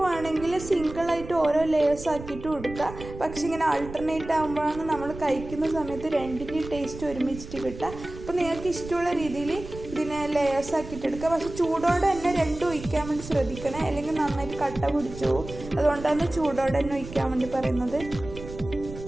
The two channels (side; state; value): right; noise; rumble, 12 dB below the sound